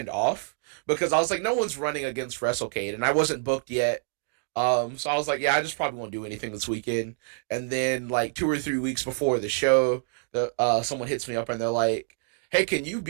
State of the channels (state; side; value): silent; left; digital silence